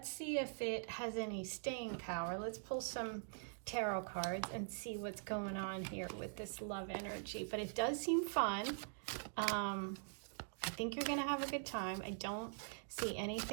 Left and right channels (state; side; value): silent; left; digital silence